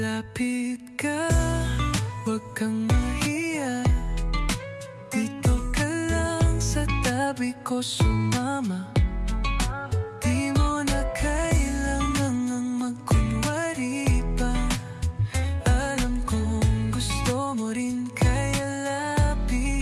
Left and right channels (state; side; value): identical; both; correlation 1.00